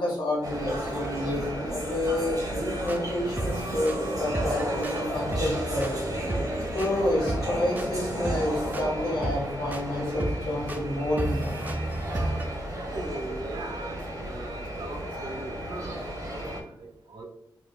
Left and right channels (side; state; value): both; normal; correlation 0.77